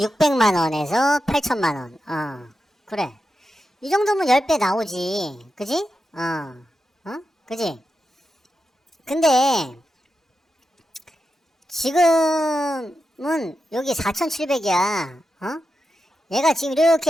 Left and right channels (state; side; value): normal; both; correlation 0.89